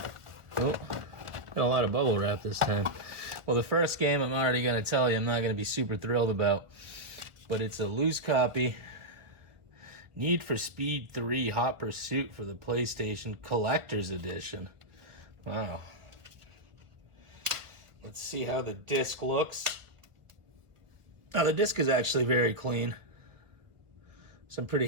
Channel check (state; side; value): late; left; 1.6 ms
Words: Oh, got a lot of bubble wrap this time. Well, the first game I'm already going to tell you I'm not going to be super thrilled about, but it's a loose copy. Need for Speed 3 Hot Pursuit for the PlayStation Collector's Edition. Wow. Let's see how the disc looks. Oh, the disc is actually very clean, so I'm pretty